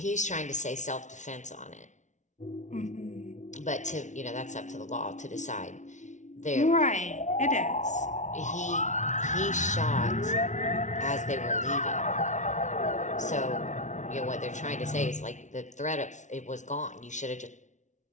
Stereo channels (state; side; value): late; right; 0.36 ms